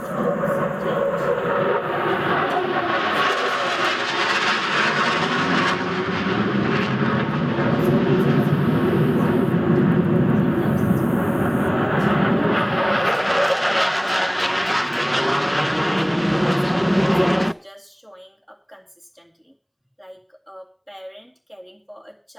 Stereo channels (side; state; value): both; identical; correlation 1.00